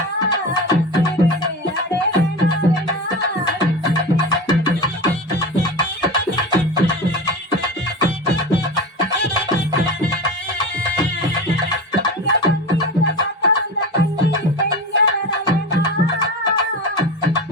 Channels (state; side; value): normal; both; correlation 0.27